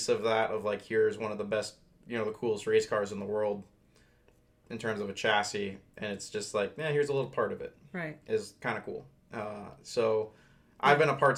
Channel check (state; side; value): identical; both; correlation 1.00